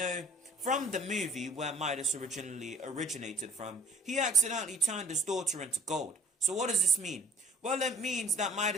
from the movie where Midas originally originated from, he accidentally turned his daughter into gold. So what does this mean? Well, it means that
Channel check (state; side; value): normal; both; correlation 0.54